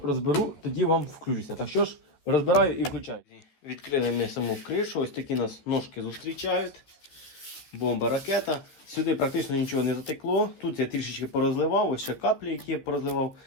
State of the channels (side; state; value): right; late; 14 ms